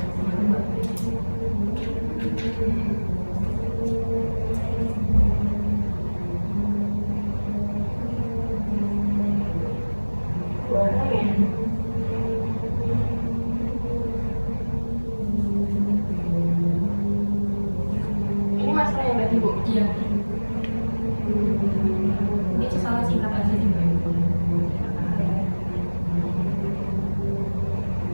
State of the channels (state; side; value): inverted; both; correlation -1.00